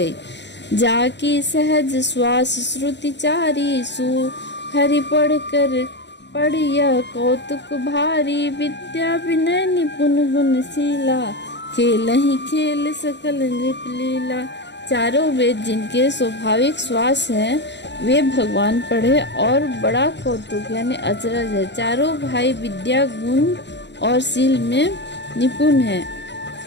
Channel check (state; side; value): late; right; 0.51 ms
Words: जाकी सहज श्वास श्रुति चारी, सु हरि पढ़िया कौतुक भारी, विद्या विनय निपुण गुणशीला, खेल ही खेल सकल नृप लीला। चारों वेद जिनके स्वाभाविक श्वास हैं, वे भगवान पढ़े और बड़ा कौतुक यानी अचरज है। चारों भाई विद्या, गुण और शील में निपुण हैं